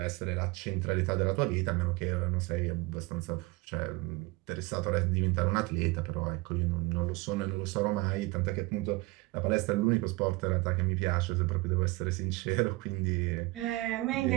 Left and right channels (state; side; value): quieter; left; 22.5 dB